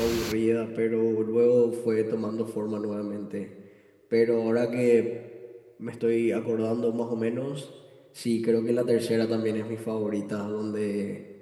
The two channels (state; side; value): identical; both; correlation 1.00